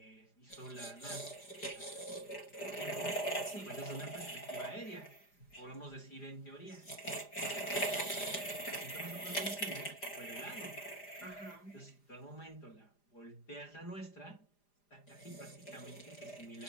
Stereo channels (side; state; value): right; late; 4.9 ms